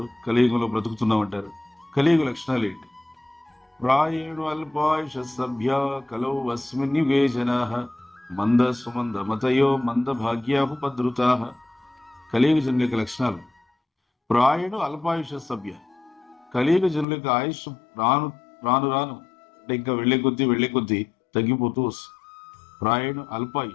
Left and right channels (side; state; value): right; drops out; at 17.1 s